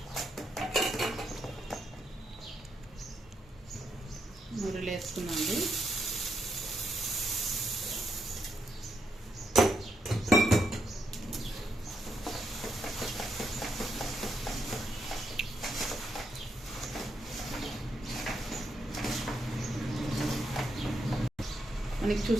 మురులు వేసుకున్నాండి. మనకి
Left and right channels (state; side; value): normal; both; correlation 0.80